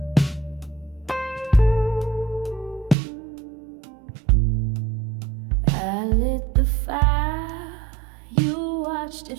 I lit the fire, you watched it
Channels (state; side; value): drops out; left; at 3.0 s